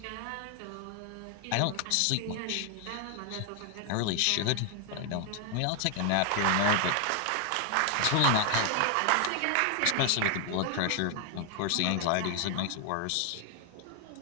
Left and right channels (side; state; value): both; different; correlation 0.00